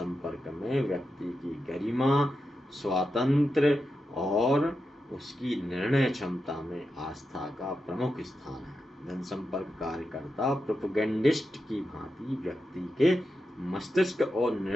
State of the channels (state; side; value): normal; both; correlation 0.89